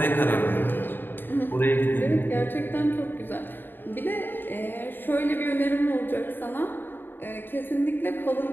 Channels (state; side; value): late; right; 0.094 ms